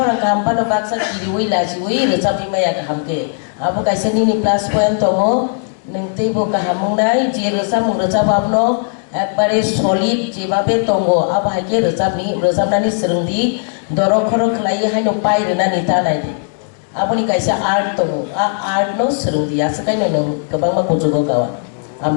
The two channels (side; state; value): right; silent; digital silence